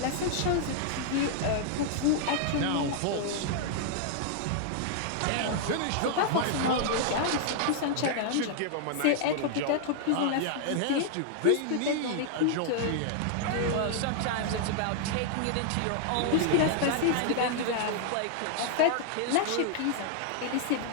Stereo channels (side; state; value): both; different; correlation -0.01